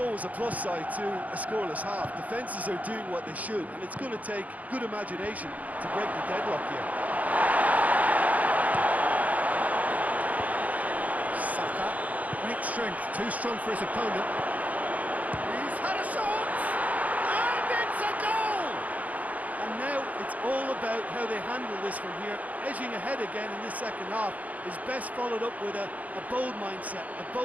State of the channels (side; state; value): left; late; 0.074 ms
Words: a plus side to a scoreless half. Defences are doing what they should, and it's going to take good imagination to break the deadlock here. Saka, great strength, too strong for his opponent. He's had a shot! And it's a goal! And now it's all about how they handle this from here. Edging ahead again in this second half is best followed up with a bold mindset, a